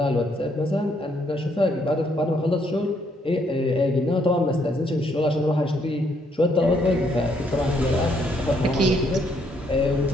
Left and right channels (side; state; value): both; normal; correlation 0.71